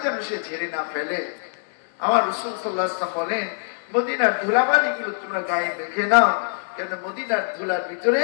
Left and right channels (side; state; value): right; silent; digital silence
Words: যেন সে ঝেড়ে না ফেলে। আমার রাসূল সাল্লাল্লাহু আলাইহি ওয়াসাল্লাম বলেন, মদিনার ধুলাবালি গুলো তোমরা গায়ে রেখে নাও, কেন মদিনার ধুলার ভিতরে